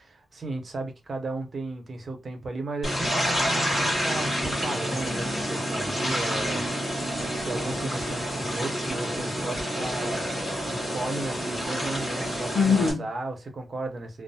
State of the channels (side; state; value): both; normal; correlation 0.85